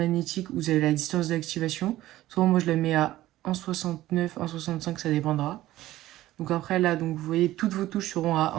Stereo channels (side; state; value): left; quieter; 15.3 dB